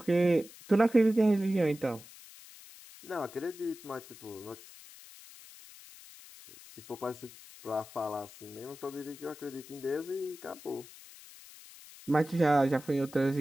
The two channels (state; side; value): noise; left; hiss, 19 dB below the sound